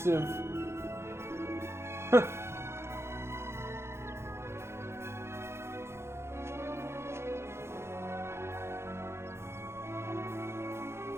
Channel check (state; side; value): late; left; 0.13 ms